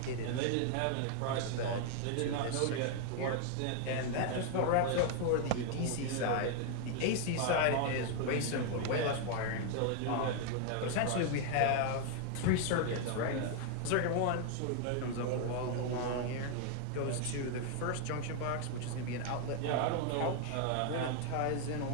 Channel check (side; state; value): both; different; correlation 0.00